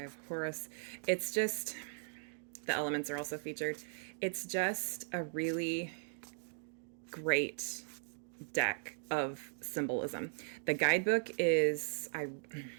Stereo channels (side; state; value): left; silent; digital silence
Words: Horus. It's just, the elements are also featured. It's just a really great deck of symbolism. The guidebook it's